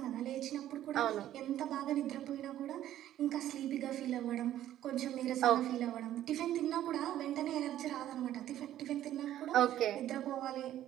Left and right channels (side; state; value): left; quieter; 12.5 dB